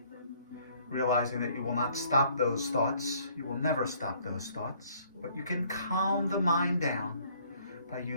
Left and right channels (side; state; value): both; inverted; correlation -0.61